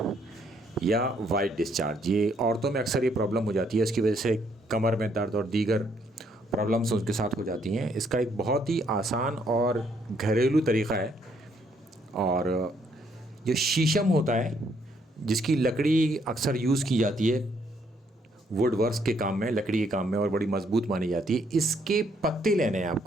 या वाइट डिस्चार्ज। ये औरतों में अक्सर ये प्रॉब्लम हो जाती है, इसकी वजह से कमर में दर्द और दीगर प्रॉब्लम्स उनके साथ हो जाती हैं। इसका एक बहुत ही आसान और घरेलू तरीक़ा है। और जो शीशम होता है, जिसकी लकड़ी अक्सर यूज़ की जाती है वुड वर्क्स के काम में, लकड़ी के काम में, और बड़ी मज़बूत मानी जाती है। इसके पत्ते लेने हैं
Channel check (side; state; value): both; normal; correlation 0.70